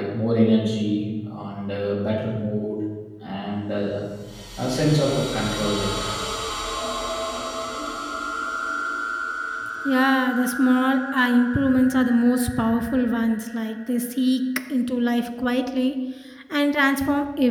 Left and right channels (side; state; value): both; identical; correlation 1.00